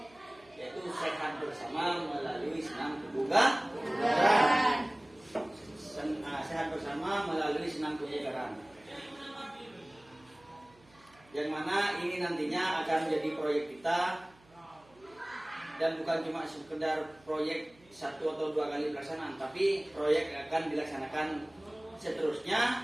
Yaitu sehat bersama melalui senam kebugaran. Sehat bersama melalui senam kebugaran. Yang mana ini nantinya akan menjadi proyek kita, dan bukan cuma sekedar proyek 1 atau 2 kali pelaksanaan, tapi proyek akan dilaksanakan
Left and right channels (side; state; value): right; noise; hum, 28 dB below the sound